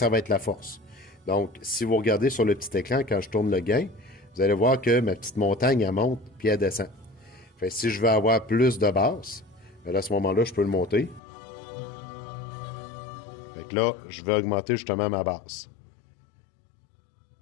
va être la force. Donc, si vous regardez sur le petit écran, quand je tourne le gain, vous allez voir que ma petite montagne, elle monte, puis elle descend. Fait que si je veux avoir plus de basse, ben là, à ce moment-là, je peux le monter. Fait que là, je vais augmenter justement ma basse.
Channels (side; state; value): right; drops out; at 11.2 s